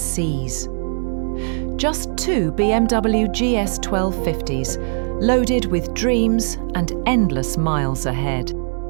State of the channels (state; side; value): silent; left; digital silence